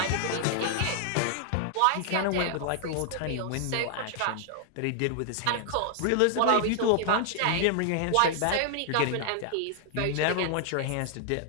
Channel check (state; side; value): different; both; correlation 0.00